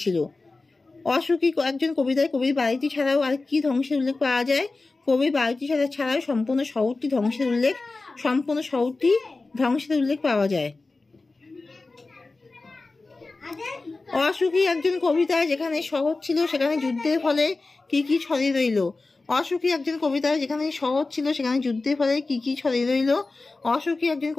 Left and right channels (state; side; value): quieter; right; 3.5 dB